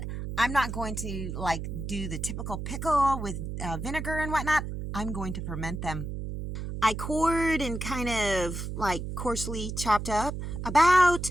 I'm not going to do the typical pickle with vinegar and whatnot. I'm going to ferment them. I cored and kind of coarsely chopped up about,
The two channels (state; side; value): noise; right; hum, 5 dB below the sound